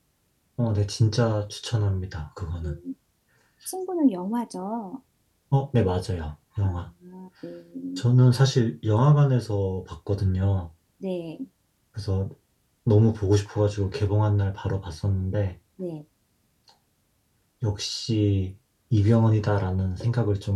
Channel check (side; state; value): both; identical; correlation 1.00